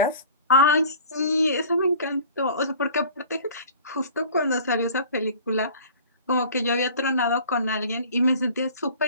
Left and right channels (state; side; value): inverted; both; correlation -0.45